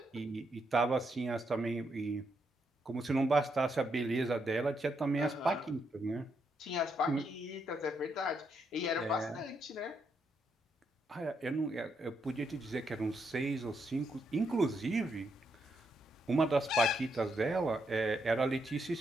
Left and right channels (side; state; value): both; normal; correlation 0.78